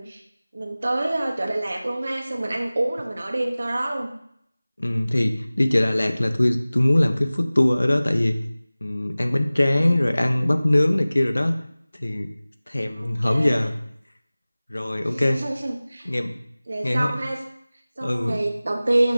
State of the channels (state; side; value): inverted; both; correlation -0.98